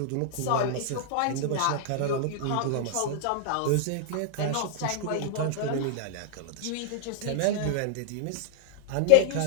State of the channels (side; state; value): both; different; correlation -0.01